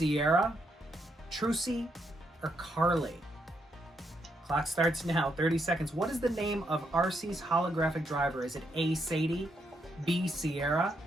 Trucy, or Carly? Clock starts now, 30 seconds. What is the name of RC's holographic driver? Is it A, Sadie, B, Sierra,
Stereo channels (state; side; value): normal; both; correlation 0.78